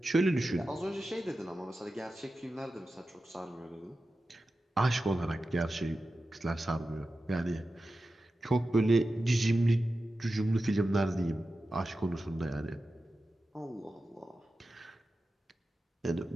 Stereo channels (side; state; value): both; normal; correlation 0.93